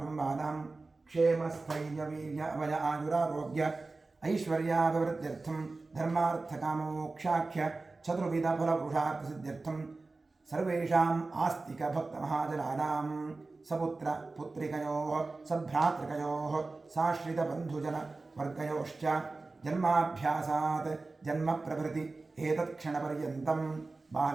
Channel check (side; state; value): left; quieter; 3.5 dB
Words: क्षेमस्थैर्यवीर्य अभय आयुरारोग्य ऐश्वर्याभिवृद्ध्यर्थं धर्मार्थकामोक्षाख्य चतुर्विधफलपुरुषार्थसिद्ध्यर्थं सर्वेषाम् आस्तिकभक्तमहाजनानां सपुत्र पुत्रिकयोः सभ्रातृकयोः साश्रितबन्धुजनवर्गयोश्च जन्माभ्यासात् जन्मप्रभृति एतत्क्षणपर्यन्तं